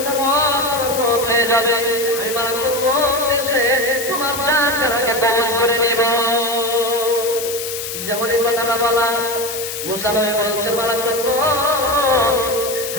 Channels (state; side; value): noise; left; hiss, 6 dB below the sound